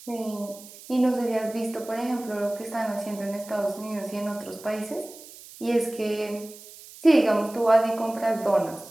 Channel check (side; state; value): right; noise; hiss, 18 dB below the sound